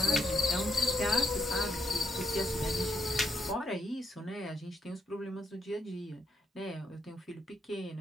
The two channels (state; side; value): normal; both; correlation 0.79